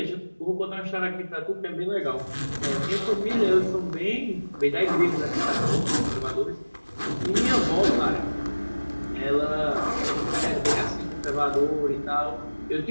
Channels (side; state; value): both; inverted; correlation -1.00